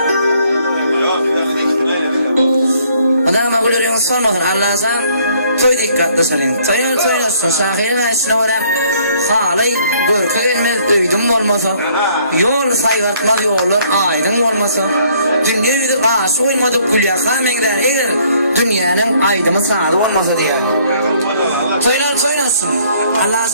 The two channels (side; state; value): both; inverted; correlation -0.63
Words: adamı gülüyorsun sormadın Allah'tan toy dikkatli salın toyuyorsun şahirin içine varıp halay görkü gelmez öydüm olmasa yol sayvartmaz yollar aydın olmasa dünya yüzü karşı olmadık gülya kamengler eğer dünyanın aydımı sağdı olmasa diye toyuyorsun